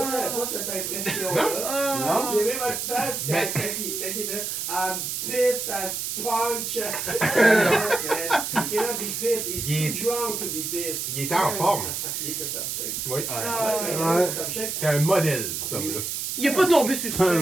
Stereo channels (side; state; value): right; noise; hiss, 3 dB below the sound